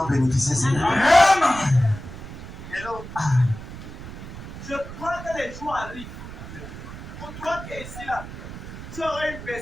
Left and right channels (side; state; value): right; noise; rumble, 12 dB below the sound